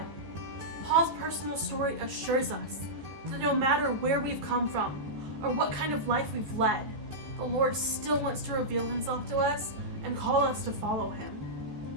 Paul's personal story assures us that no matter where we've come from or what kind of life we've led, the Lord still wants to reveal himself to us and call us to follow him.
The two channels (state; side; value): late; left; 14 ms